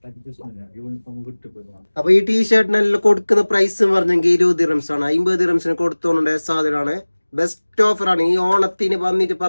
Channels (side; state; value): both; inverted; correlation -1.00